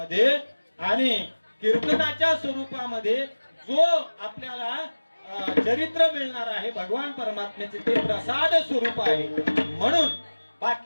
आणि कीर्तनाच्या स्वरूपामध्ये जो आपल्याला चरित्र मिळणार आहे भगवान परमात्म्याचे ते प्रसाद स्वरूप आहे. म्हणून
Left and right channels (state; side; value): inverted; both; correlation -1.00